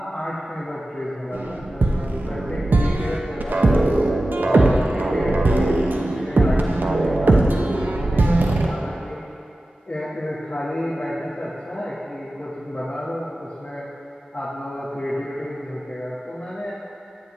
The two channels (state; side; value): normal; both; correlation 0.94